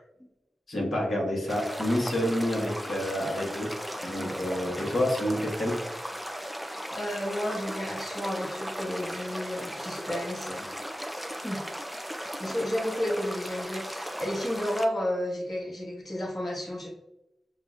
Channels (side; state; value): both; normal; correlation 0.91